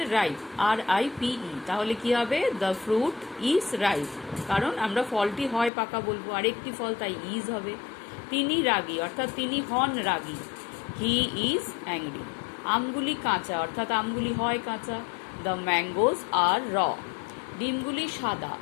রাইপ, RIPE। তাহলে কি হবে? দ্য ফ্রুট ইজ রাইপ, কারণ আমরা ফলটি হয় পাকা বলবো, আরেকটি ফল তাই ইজ হবে। তিনি রাগী অর্থাৎ তিনি হন রাগী, হি ইজ অ্যাংরি। আমগুলি কাঁচা অর্থাৎ আমগুলি হয় কাঁচা, দ্য ম্যাঙ্গোজ আর র। ডিমগুলি সাদা,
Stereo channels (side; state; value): right; drops out; at 5.7 s